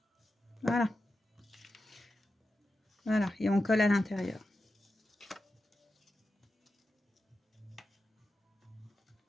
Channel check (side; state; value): both; normal; correlation 0.91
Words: Voilà. Voilà, et on colle à l'intérieur.